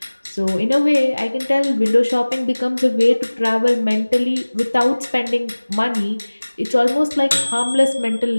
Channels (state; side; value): inverted; both; correlation -1.00